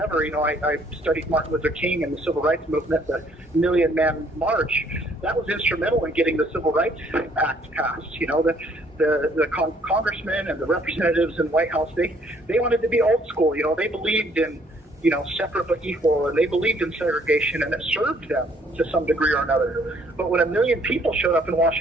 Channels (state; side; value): normal; both; correlation 0.63